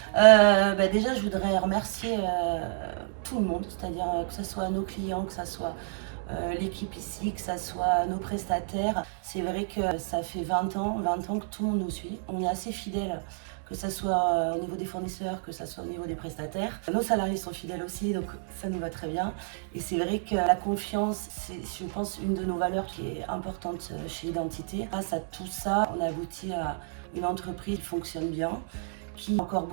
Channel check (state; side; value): silent; left; digital silence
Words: Déjà, je voudrais remercier tout le monde, c'est-à-dire que ce soit nos clients, que ce soit l'équipe ici, que ce soit nos prestataires. C'est vrai que ça fait 20 ans que tout le monde nous suit. On est assez fidèles, que ce soit au niveau des fournisseurs, que ce soit au niveau des prestataires. Nos salariés sont fidèles aussi, donc ça nous va très bien. Et c'est vrai que la confiance, c'est, je pense, une de nos valeurs qui est importante chez Identité. Grâce à tout ça, on a abouti à une entreprise qui fonctionne bien, qui a encore